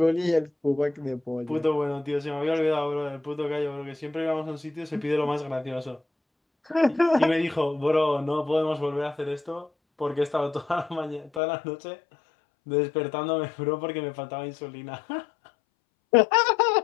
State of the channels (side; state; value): right; drops out; at 11.4 s